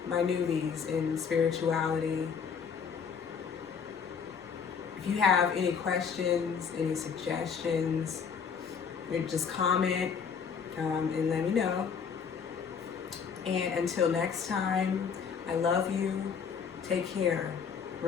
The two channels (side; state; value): right; quieter; 6.5 dB